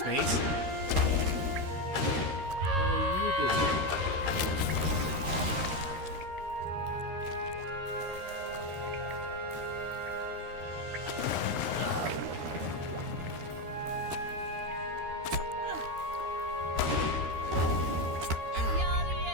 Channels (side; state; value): left; late; 13 ms